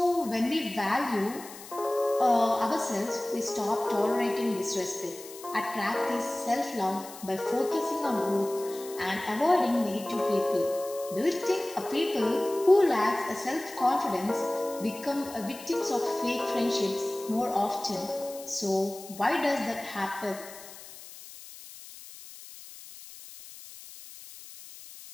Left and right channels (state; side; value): noise; left; hiss, 16 dB below the sound